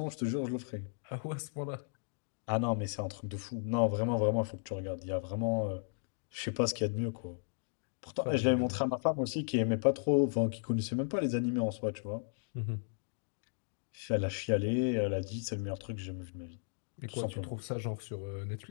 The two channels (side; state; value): right; silent; digital silence